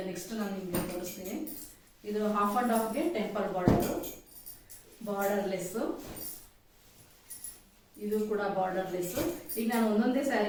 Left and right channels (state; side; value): identical; both; correlation 1.00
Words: ನೆಕ್ಸ್ಟ್ ನಾನು ನಿಮ್ಗೆ ತೋರಿಸ್ತೀನಿ. ಇದು ಹಾಫ್ ಅಂಡ್ ಹಾಫ್ಗೆ ಟೆಂಪಲ್ ಬಾರ್ಡರ್ಲೆಸ್. ಇದು ಕೂಡ ಬಾರ್ಡರ್ಲೆಸ್. ಈಗ ನಾನು ಒಂದೊಂದೇ